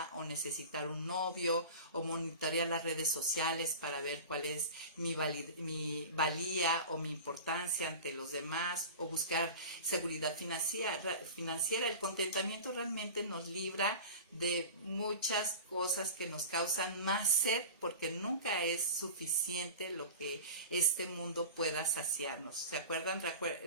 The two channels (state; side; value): inverted; both; correlation -0.34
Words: o necesitar un novio o monitorear las redes sociales para ver cuál es mi valía o mi importancia ante los demás o buscar seguridad financiera. El contentamiento realmente nos libra de muchas cosas que nos causan más sed porque nunca es suficiente lo que este mundo pueda saciarnos. ¿Se acuerdan?